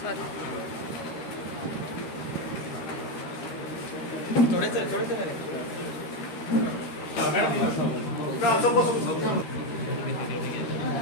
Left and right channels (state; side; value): late; right; 13 ms